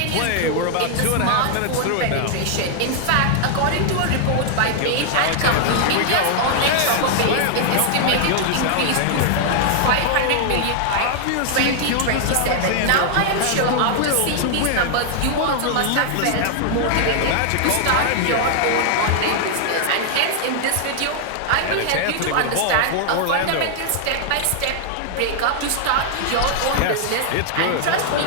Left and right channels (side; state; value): both; different; correlation 0.00